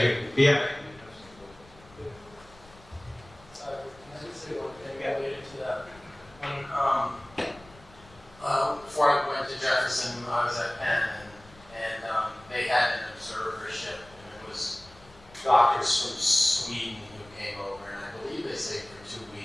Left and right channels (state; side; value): noise; left; rumble, 24 dB below the sound